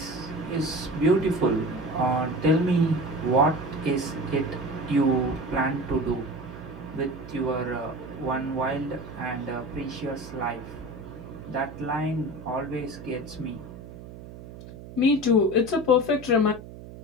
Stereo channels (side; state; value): right; noise; hum, 14 dB below the sound